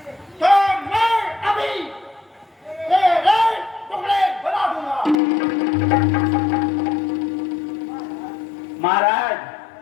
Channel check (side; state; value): right; drops out; at 5.2 s